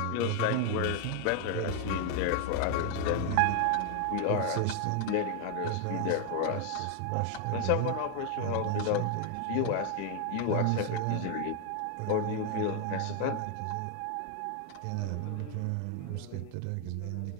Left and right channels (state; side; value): different; both; correlation 0.00